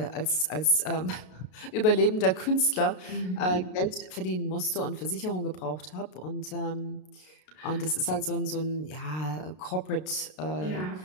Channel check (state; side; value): late; right; 33 ms